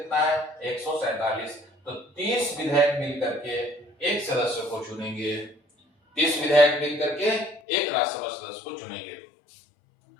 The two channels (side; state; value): right; drops out; at 7.6 s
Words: है? 147। तो 30 विधायक मिलकर के एक सदस्य को चुनेंगे। 30 विधायक मिलकर के एक राज्यसभा सदस्य को चुनेंगे।